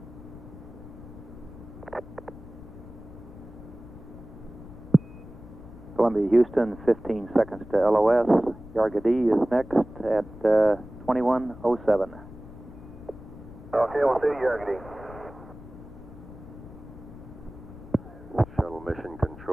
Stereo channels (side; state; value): left; noise; rumble, 16 dB below the sound